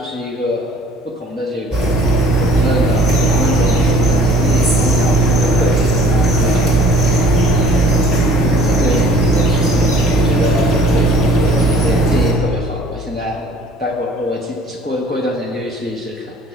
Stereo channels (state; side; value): normal; both; correlation 0.52